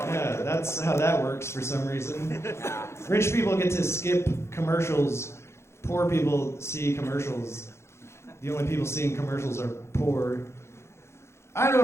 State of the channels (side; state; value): right; late; 0.13 ms